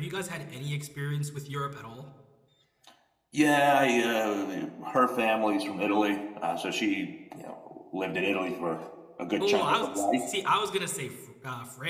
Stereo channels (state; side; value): identical; both; correlation 1.00